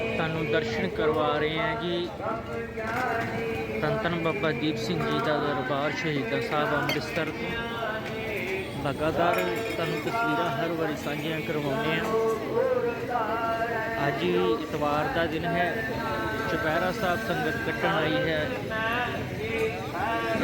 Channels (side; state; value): both; identical; correlation 1.00